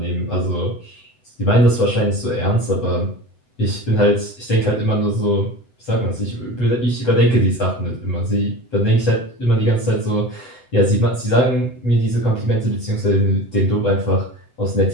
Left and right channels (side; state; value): right; late; 7.9 ms